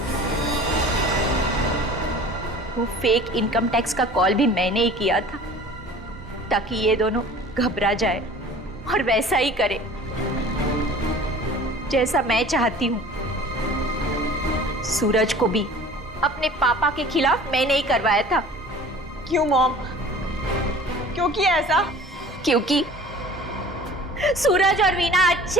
वो फेक इनकम टैक्स का कॉल भी मैंने ही किया था ताकि ये दोनों घबरा जाए और वैसा ही करे जैसा मैं चाहती हूं। सूरज को भी अपने पापा के खिलाफ मैंने ही करवाया था। क्यों मॉम? क्यों किया ऐसा? क्योंकि सूरज और वीना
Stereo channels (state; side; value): normal; both; correlation 0.45